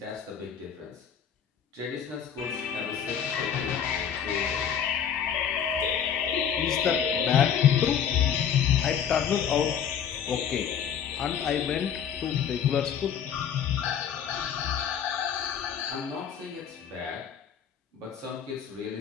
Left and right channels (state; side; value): quieter; right; 8.2 dB